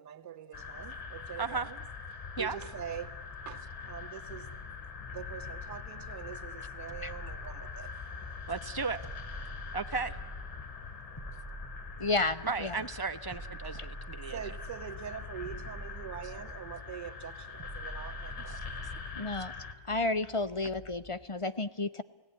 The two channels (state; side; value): late; right; 1.0 ms